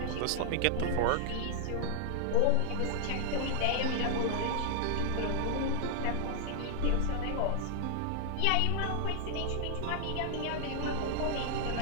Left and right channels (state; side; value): different; both; correlation 0.00